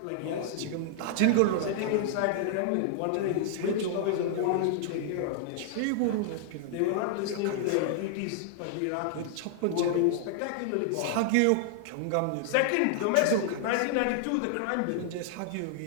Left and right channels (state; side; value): different; both; correlation -0.01